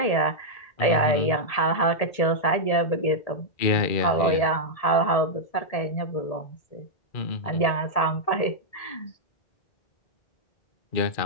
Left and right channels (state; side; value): late; right; 1.8 ms